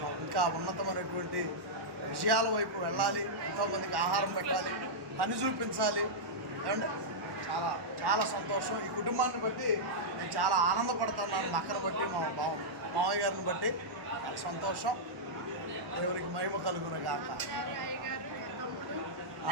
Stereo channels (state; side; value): late; left; 1.1 ms